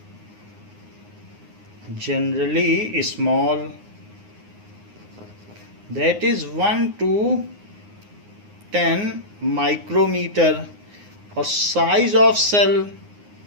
generally small, that is 1 to 10 micrometer. और size of cell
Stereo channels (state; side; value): late; left; 9.6 ms